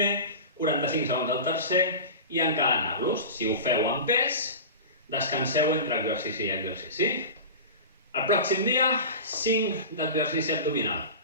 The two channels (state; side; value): inverted; both; correlation -0.31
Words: 45 segons al tercer, i encadenar-los. Si ho feu amb pes, descanseu entre exercici i exercici. El pròxim dia, 5 d'exercici abdominal.